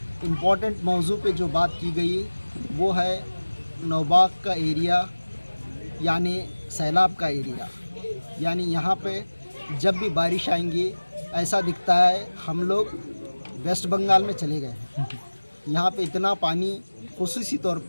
इम्पोर्टेंट मौजू पे जो बात की गई वो है नौबाग का एरिया यानी सैलाब का एरिया। यानी यहाँ पे जब भी बारिश आएंगी ऐसा दिखता है हम लोग वेस्ट बंगाल में चले गए हैं। यहाँ पे इतना पानी, खुसूसी तौर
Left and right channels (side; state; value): both; inverted; correlation -1.00